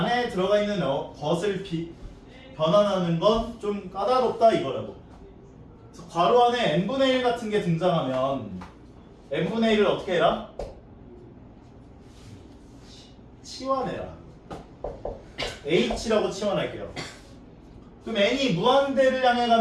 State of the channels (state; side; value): identical; both; correlation 1.00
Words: 것을 변환하는 건 좀 까다롭다 이거라고. 그래서 괄호 안에 n분의 1 같은 게 등장하면 n분의 1을 어떻게 해라? 치환해라. h라고 치환할게요. 그럼 n이 무한대를 향해